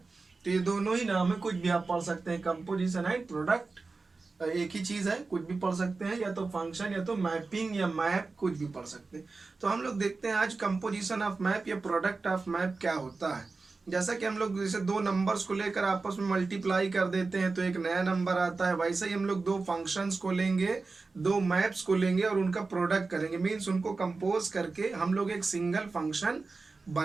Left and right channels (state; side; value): quieter; left; 3.9 dB